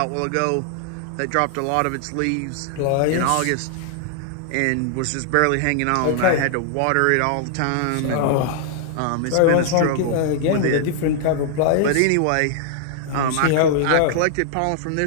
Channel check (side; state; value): both; different; correlation -0.01